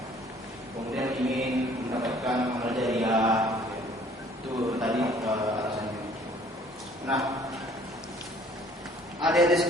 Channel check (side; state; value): both; normal; correlation 0.56